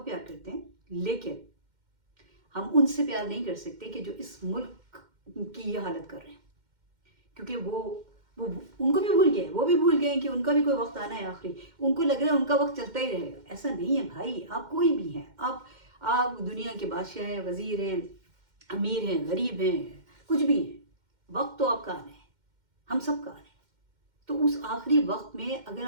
پیار کرتے ہیں لیکن ہم ان سے پیار نہیں کر سکتے کہ جو اس ملک کی یہ حالت کر رہے ہیں. کیونکہ وہ ان کو بھی بھول گئے، وہ بھی بھول گئے کہ ان کا بھی کوئی وقت آنا ہے آخری. ان کو لگ رہا ہے ان کا وقت چلتا ہی رہے گا. ایسا نہیں ہے بھائی، آپ کوئی بھی ہیں، آپ دنیا کے بادشاہ ہیں، وزیر ہیں، امیر ہیں، غریب ہیں، کچھ بھی ہیں، وقت تو آپ کا آنا ہے، ہم سب کا آنا ہے. تو اس آخری وقت میں اگر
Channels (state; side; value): late; left; 2.1 ms